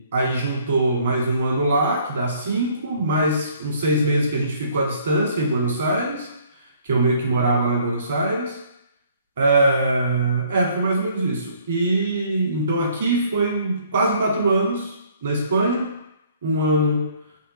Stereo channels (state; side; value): inverted; both; correlation -0.60